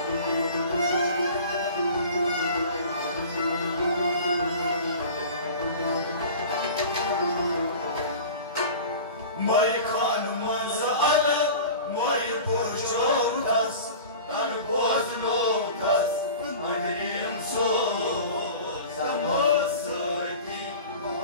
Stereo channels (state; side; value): inverted; both; correlation -0.38